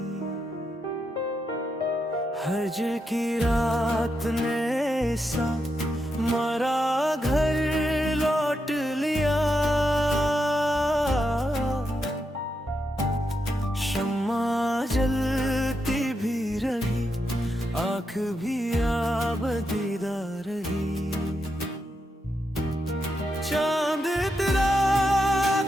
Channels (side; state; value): both; normal; correlation 0.84